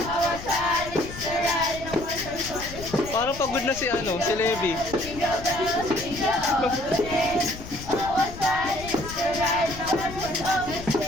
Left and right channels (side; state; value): left; noise; rumble, 12 dB below the sound